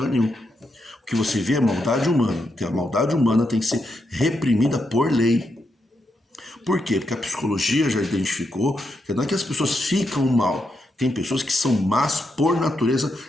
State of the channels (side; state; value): both; normal; correlation 0.83